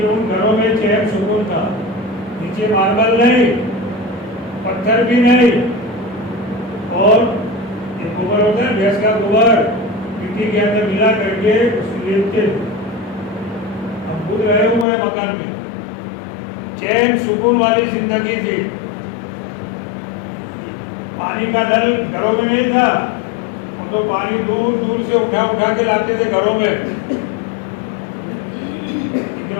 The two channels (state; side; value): drops out; right; at 14.9 s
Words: ان گھروں میں چین سکون تھا. نیچے ماربل نہیں، پتھر بھی نہیں، اور ایک گوبر ہوتا ہے بھینس کا گوبر، مٹی کے اندر ملا کر کے اس کو لیپتے. ہم خود رہے ہوئے مکان میں. چین سکون والی زندگی تھی. پانی کا نل گھروں میں نہیں تھا، ہم تو پانی دور دور سے اٹھا اٹھا کے لاتے تھے گھروں میں.